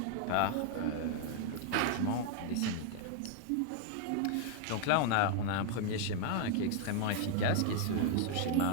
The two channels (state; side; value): different; both; correlation 0.00